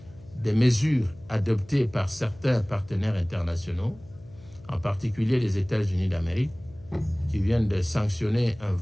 des mesures adoptées par certains partenaires internationaux, en particulier les États-Unis d'Amérique, qui viennent de sanctionner un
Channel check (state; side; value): noise; left; hum, 22 dB below the sound